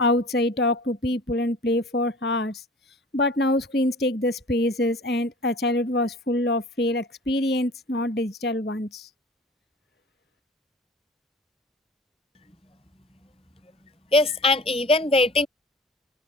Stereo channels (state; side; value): normal; both; correlation 0.42